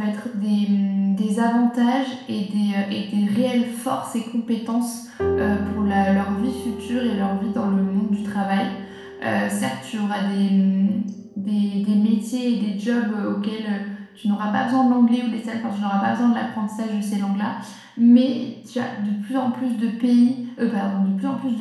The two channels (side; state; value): both; identical; correlation 1.00